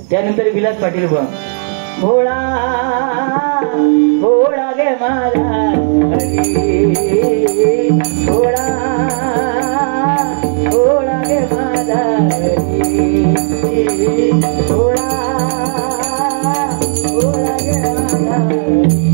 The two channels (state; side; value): silent; left; digital silence